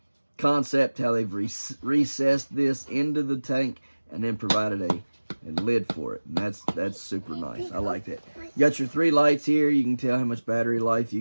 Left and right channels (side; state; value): both; inverted; correlation -1.00